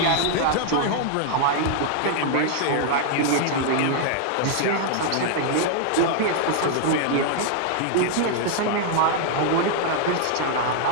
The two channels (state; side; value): different; both; correlation 0.00